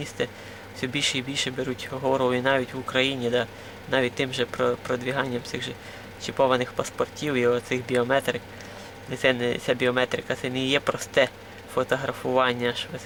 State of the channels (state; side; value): identical; both; correlation 1.00